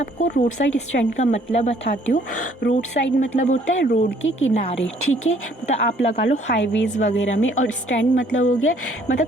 आपको रोड साइड स्टैंड का मतलब बताती हूँ। रोड साइड मतलब होता है रोड के किनारे, ठीक है। मतलब आप लगा लो हाईवेज वगैरह में, और स्टैंड मतलब हो गया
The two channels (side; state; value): both; normal; correlation 0.61